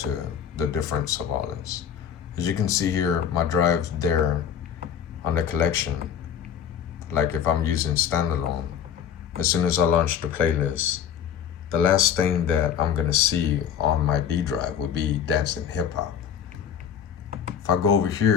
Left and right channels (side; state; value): right; quieter; 8.5 dB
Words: the difference of all this. As you can see here, my drive there on the collection, like if I'm using standalone, as soon as I launch the playlist, the last thing that I'm gonna see on my D drive would be dancing hip hop. If I go over